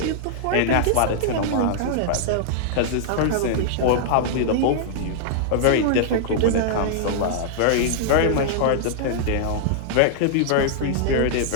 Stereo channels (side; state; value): both; different; correlation -0.01